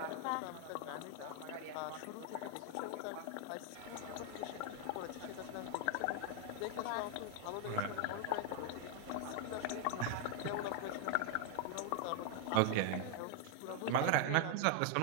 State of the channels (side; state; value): both; different; correlation 0.00